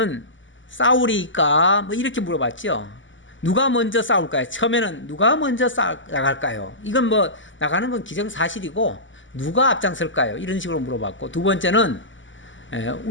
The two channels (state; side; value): late; right; 0.55 ms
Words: 싸우리까 뭐 이렇게 물어봤죠. 누가 먼저 싸울까요? 처음에는 누가 먼저 나갈까요? 이건 뭐 나가는 건 기정사실이고 누가 앞장설까요? 이런 식으로 물어봤고 두 번째는